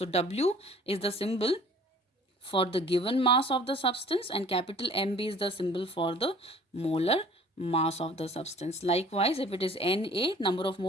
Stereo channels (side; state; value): both; normal; correlation 0.50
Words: W is the symbol for the given mass of the substance and capital Mb is the symbol for the molar mass of the substance. Likewise, if it is Na, number of